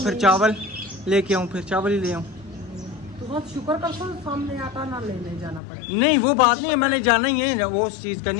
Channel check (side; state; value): right; drops out; at 5.6 s